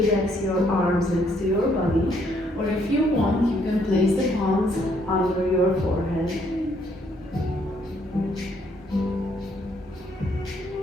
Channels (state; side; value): normal; both; correlation 0.69